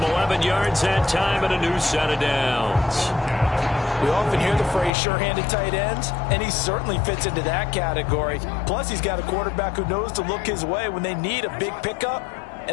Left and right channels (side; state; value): right; drops out; at 4.9 s